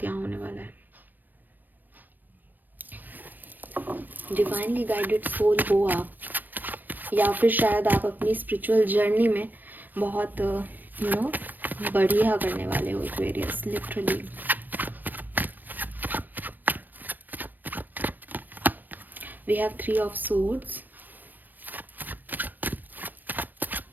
यहाँ होने वाला है। डिवाइनली गाइडेड सोल हो आप, या फिर शायद आप अपनी स्पिरिचुअल जर्नी में बहुत बढ़िया करने वाले हो Aquarius, literally. We have 3 of swords,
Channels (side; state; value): left; late; 0.090 ms